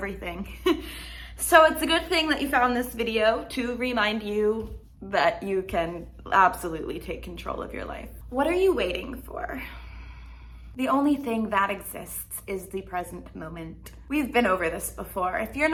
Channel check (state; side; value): identical; both; correlation 1.00